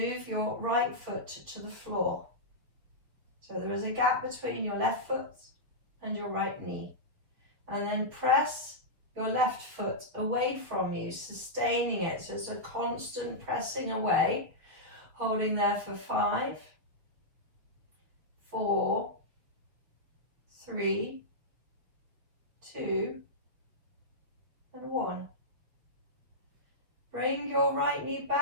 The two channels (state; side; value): late; left; 6.7 ms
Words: your right foot to the floor. So there is a gap between your left foot and your right knee. And then press your left foot away from you, sustaining it. So it's a constant pressing away, holding there for 5, 4, 3, 2, and 1. Bring your right knee